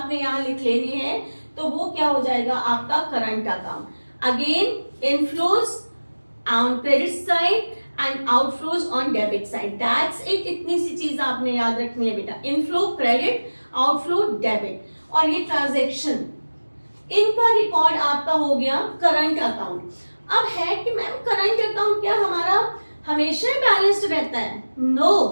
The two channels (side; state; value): both; inverted; correlation -1.00